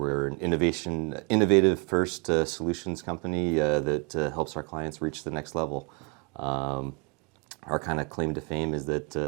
an innovative first solutions company that helps our clients reach the next level. Our kind of claim to fame is that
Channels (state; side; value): quieter; left; 31.8 dB